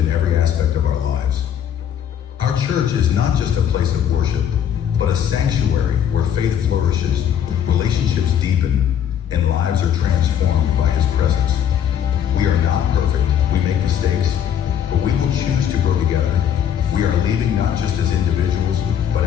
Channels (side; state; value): right; quieter; 9.2 dB